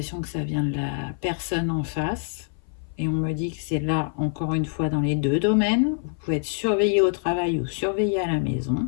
que ça vient de la personne en face. Et on me dit que c'est là, encore une fois, dans les deux domaines. Vous pouvez être surveillé au travail ou surveillé à la maison.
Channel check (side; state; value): right; silent; 58 dB below the other